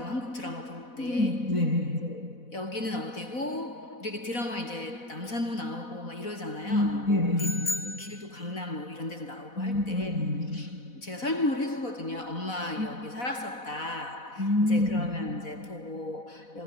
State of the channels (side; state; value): right; late; 4.1 ms